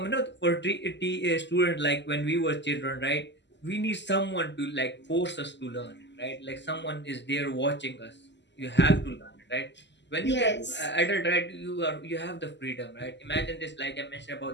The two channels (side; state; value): right; late; 0.51 ms